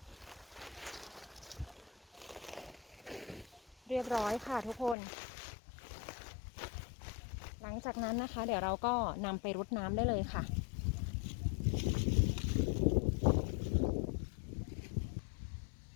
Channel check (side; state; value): right; drops out; at 5.0 s